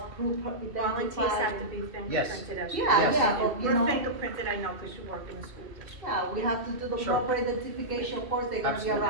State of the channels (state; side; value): late; left; 2.7 ms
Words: proof, Volunteers identified. have to be fingerprinted as well. Yeah, Yes. yeah, but You're fingerprinted, I know, because you work in the school district. Yeah, we have to do the Sure. proper identification, of course, they're gonna be Absolutely.